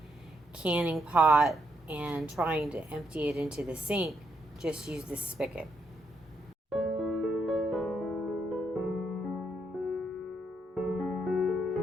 canning pot and trying to empty it into the sink. Just use this spigot.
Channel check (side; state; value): both; normal; correlation 0.76